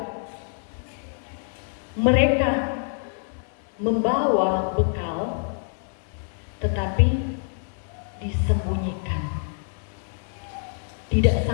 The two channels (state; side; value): silent; right; 60 dB below the other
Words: mereka membawa bekal tetapi disembunyikan, tidak